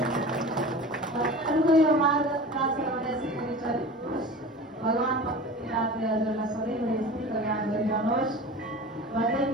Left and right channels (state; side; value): normal; both; correlation 0.36